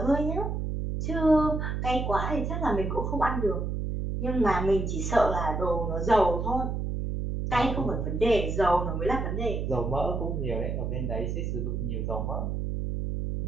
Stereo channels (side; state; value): right; noise; hum, 2 dB below the sound